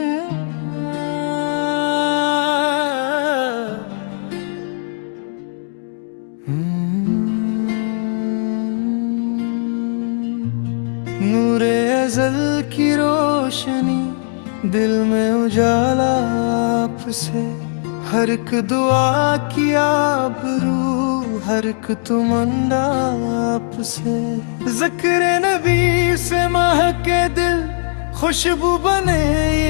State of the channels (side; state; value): right; silent; digital silence